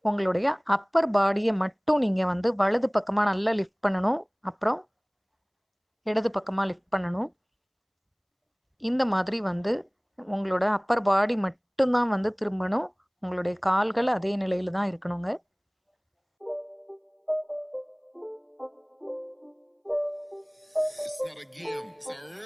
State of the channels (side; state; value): both; identical; correlation 1.00